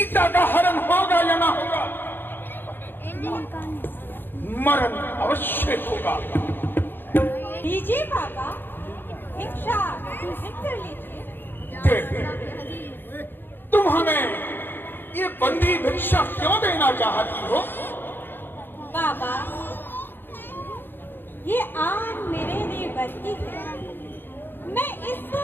का हरण होगा या ना होगा, मरण अवश्य होगा। लीजिए बाबा, भिक्षा ग्रहण कर लीजिए। देवी, तुम हमें ये बंदी भिक्षा क्यों देना चाहती हो? बाबा, ये आन मेरे लिए बरती है, मैं इसको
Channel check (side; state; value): right; late; 0.098 ms